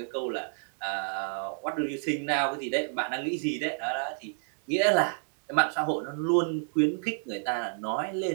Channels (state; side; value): silent; left; 58 dB below the other